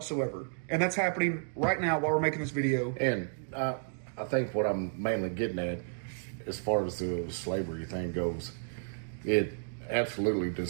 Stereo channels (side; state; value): left; silent; digital silence